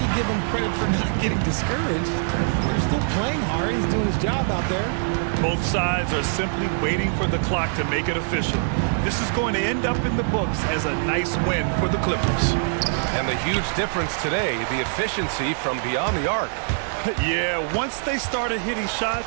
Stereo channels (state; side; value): silent; left; digital silence